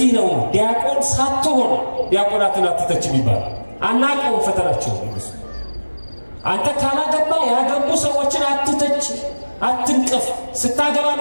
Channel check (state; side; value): inverted; both; correlation -1.00